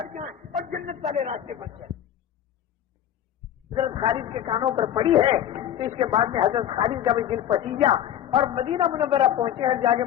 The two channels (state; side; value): quieter; right; 10.8 dB